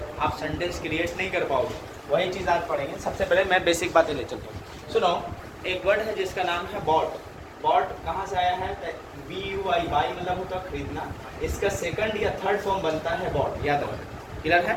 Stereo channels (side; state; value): both; identical; correlation 1.00